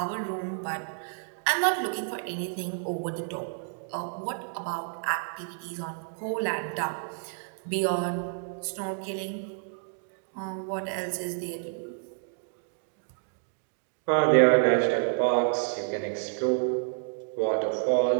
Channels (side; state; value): left; silent; digital silence